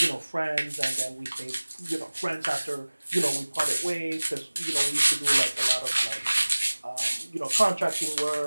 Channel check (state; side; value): inverted; both; correlation -1.00